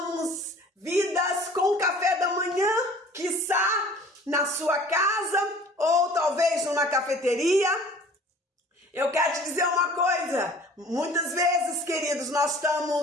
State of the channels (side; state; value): both; normal; correlation 0.48